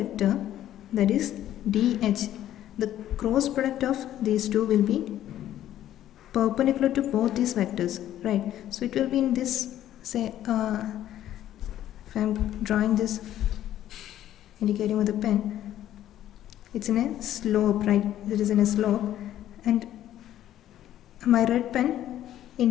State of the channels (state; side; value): quieter; right; 12.2 dB